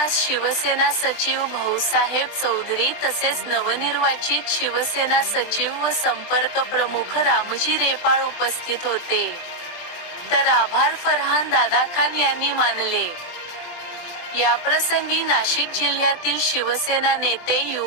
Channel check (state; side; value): late; right; 23 ms